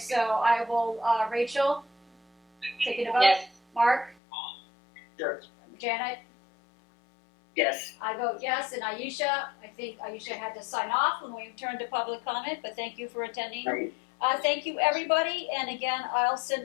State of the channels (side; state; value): right; drops out; at 4.2 s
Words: I will, Rachel, taking a vote. Yes. Mark? Yes. Janet? Yes. I vote yes, and Aisha, I think Aisha had to sign off when we turned to public comment, but thank you for attending. Right. Thank you, everybody, and again, I'll send